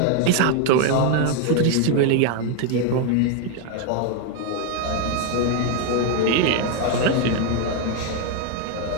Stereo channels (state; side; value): different; both; correlation 0.01